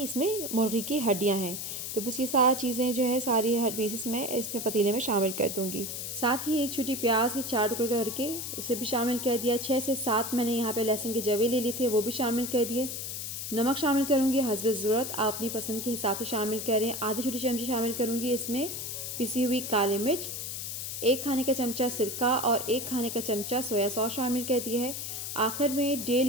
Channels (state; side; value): noise; left; hiss, 5 dB below the sound